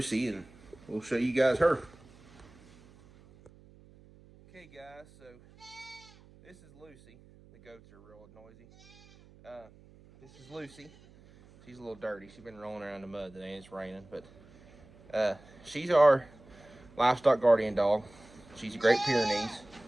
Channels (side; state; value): right; noise; hum, 24 dB below the sound